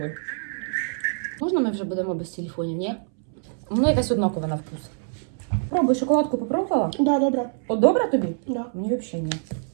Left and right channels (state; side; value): silent; left; 62 dB below the other